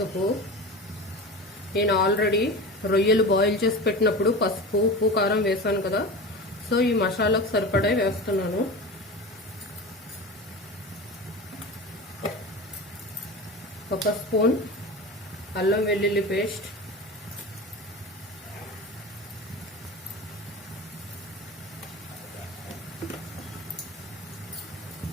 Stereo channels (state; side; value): normal; both; correlation 0.30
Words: నేను ఆల్రెడీ రొయ్యలు బాయిల్ చేసి పెట్టినప్పుడు పసుపు, ఉప్పు, కారం వేసాను కదా, సో ఈ మసాలాకు సరిపడా వేస్తున్నాను. ఒక స్పూన్ అల్లం వెల్లుల్లి పేస్ట్,